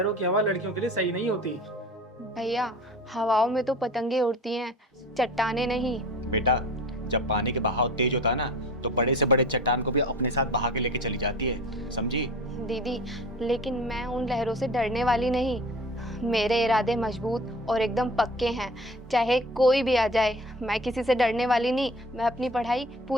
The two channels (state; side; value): normal; both; correlation 0.40